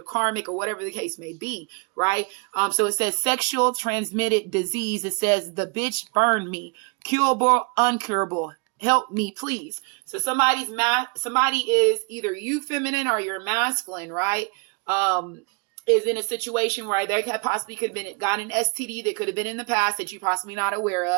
karmic, or whatever the case may be, right? So it says sexual transmitted disease. It says the bitch burned me, curable, uncurable. Help me, please. So somebody is either you feminine or you're masculine, right? Is in a situation where they possibly could have gotten an STD that could have been in the past that you're possibly not aware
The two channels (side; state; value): left; quieter; 33.2 dB